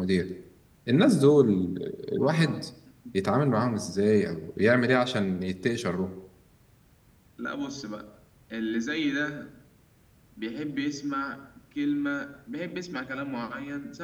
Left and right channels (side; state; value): both; identical; correlation 1.00